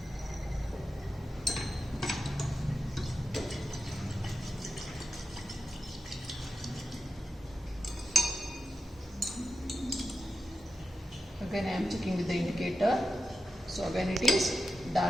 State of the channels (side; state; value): both; normal; correlation 0.89